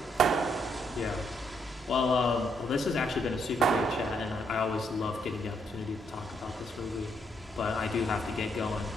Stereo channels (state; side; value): normal; both; correlation 0.74